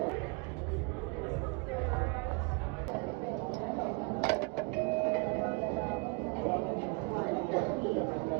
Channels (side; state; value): left; quieter; 29.3 dB